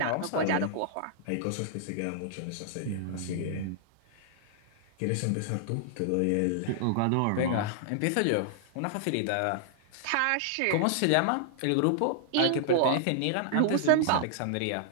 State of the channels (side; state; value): both; different; correlation -0.01